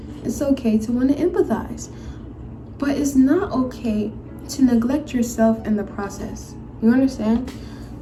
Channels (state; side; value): identical; both; correlation 1.00